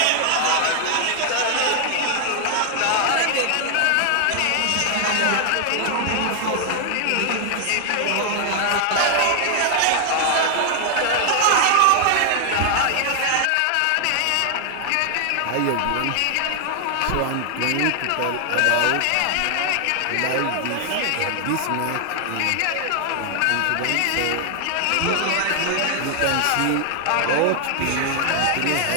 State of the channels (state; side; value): different; both; correlation 0.00